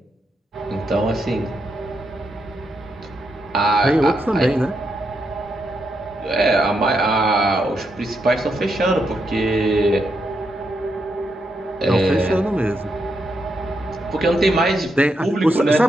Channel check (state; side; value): normal; both; correlation 0.81